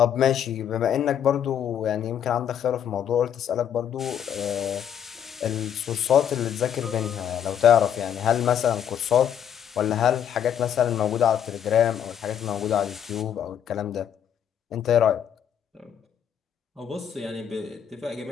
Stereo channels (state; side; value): quieter; right; 9.1 dB